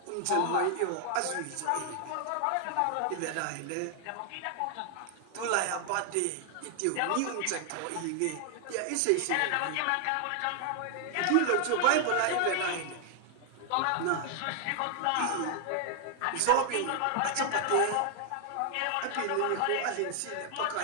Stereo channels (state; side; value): different; both; correlation 0.00